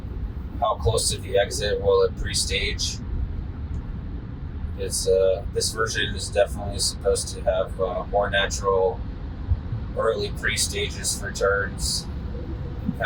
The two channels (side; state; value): both; identical; correlation 1.00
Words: close to the exit will it pre-stage. This version is definitely supposed to have more natural early pre-stages for turns.